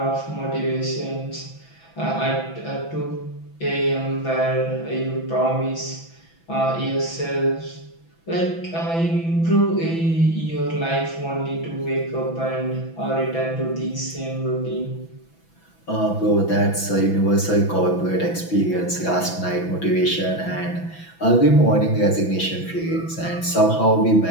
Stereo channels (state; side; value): late; right; 6.0 ms